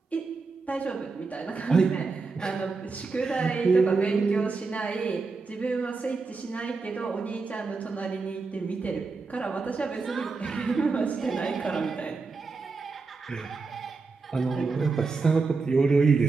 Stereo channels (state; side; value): quieter; left; 4.2 dB